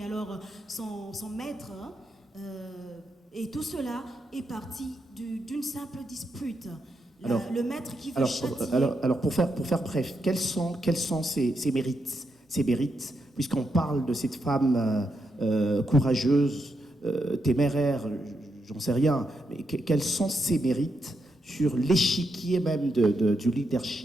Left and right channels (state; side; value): normal; both; correlation 0.83